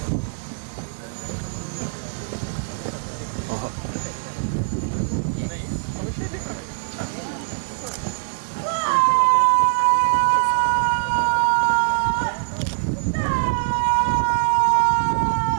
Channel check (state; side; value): silent; left; 64 dB below the other